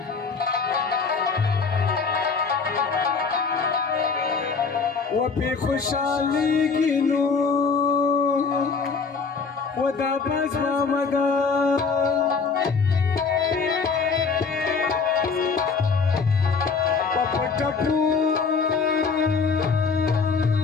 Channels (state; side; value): quieter; right; 5.0 dB